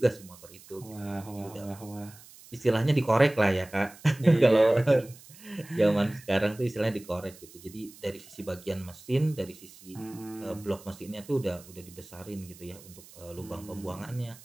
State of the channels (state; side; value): noise; right; hiss, 21 dB below the sound